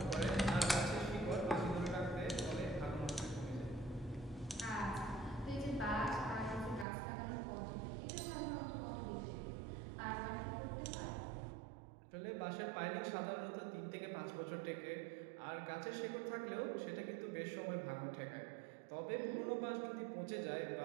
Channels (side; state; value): left; drops out; at 6.9 s